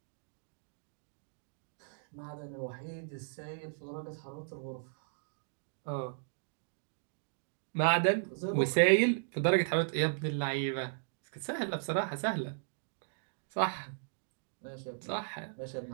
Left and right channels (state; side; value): silent; left; digital silence